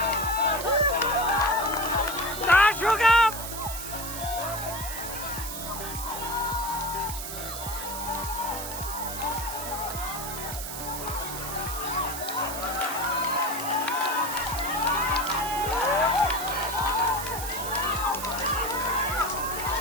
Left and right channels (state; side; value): noise; right; hiss, 7 dB below the sound